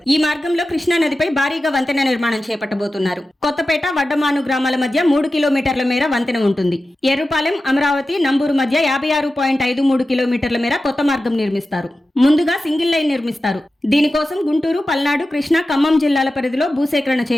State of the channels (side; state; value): both; normal; correlation 0.93